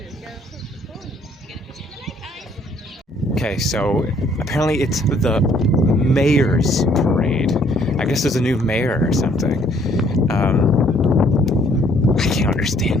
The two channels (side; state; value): both; normal; correlation 0.63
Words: Okay, so apparently it's the mayor's parade. I guess there's a new mayor or something. I can't